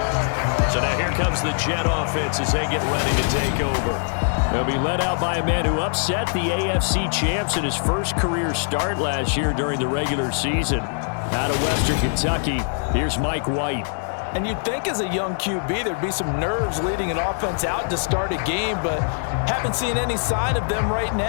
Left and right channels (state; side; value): silent; right; digital silence